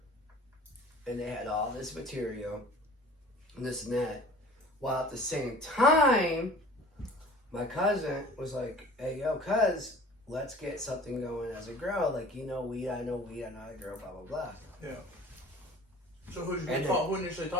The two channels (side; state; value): both; normal; correlation 0.45